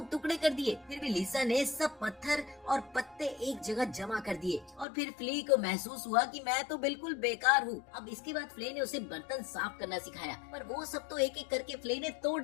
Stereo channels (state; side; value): drops out; right; at 4.9 s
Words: टुकड़े कर दिए। फिर भी लीजा ने सब पत्थर और पत्ते एक जगह जमा कर दिए और फिर फ्ले को महसूस हुआ कि मैं तो बिल्कुल बेकार हूँ। अब इसके बाद फ्ले ने उसे बर्तन साफ करना सिखाया, पर वो सब तो एक एक करके फ्ले ने तोड़